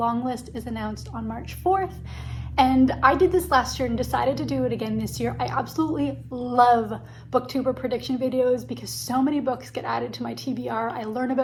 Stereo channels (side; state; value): both; identical; correlation 1.00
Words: list is announced on March 4th. And I did this last year and decided to do it again this year. I absolutely love booktuber prediction videos because so many books get added to my TBR. I learn